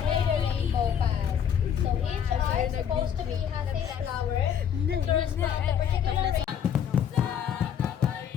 rainbow path. So each are supposed to be has a flower to correspond to particular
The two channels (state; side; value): quieter; right; 8.5 dB